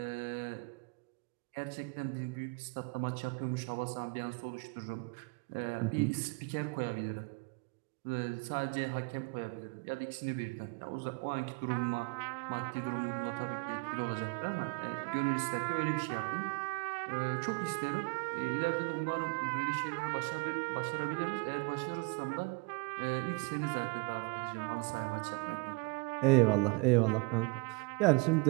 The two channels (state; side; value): quieter; left; 30.1 dB